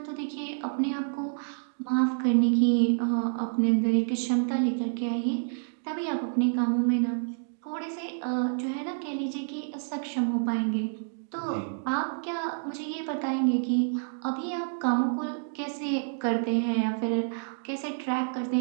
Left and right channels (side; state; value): left; silent; digital silence